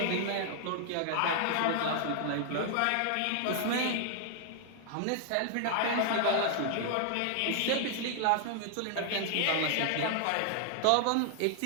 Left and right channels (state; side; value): different; both; correlation 0.00